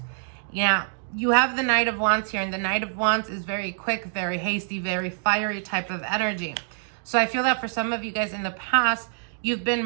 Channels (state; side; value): silent; left; 61 dB below the other